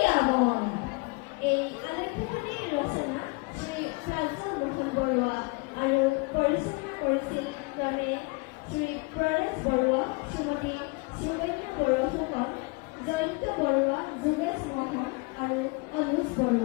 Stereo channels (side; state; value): right; quieter; 28.5 dB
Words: গামন। এই আলেখ্যখনিৰ ৰচনা শ্ৰী প্ৰাঞ্জল মোহন বৰুৱা আৰু পৰিচালনা কৰিছিল ক্ৰমে শ্ৰী প্ৰয়াস বৰুৱা, শ্ৰীমতী সুকন্যা বৰুৱা ফুকন, জয়ন্ত বৰুৱা, যোগেশ মোহন আৰু অনুজ